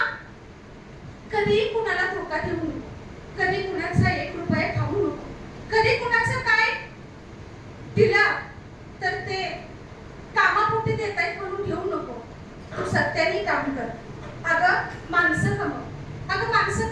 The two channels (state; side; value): identical; both; correlation 1.00